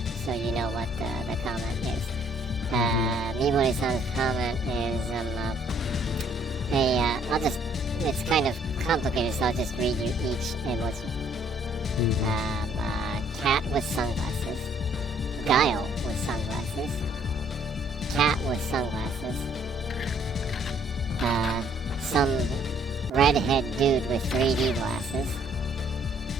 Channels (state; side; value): normal; both; correlation 0.63